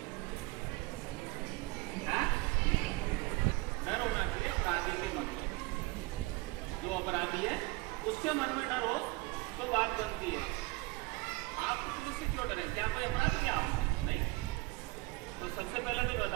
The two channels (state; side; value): quieter; left; 24.0 dB